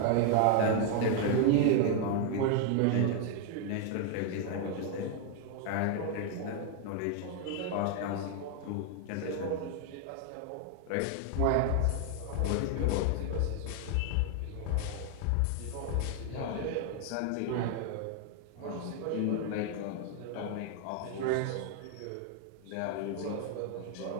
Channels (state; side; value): different; both; correlation 0.00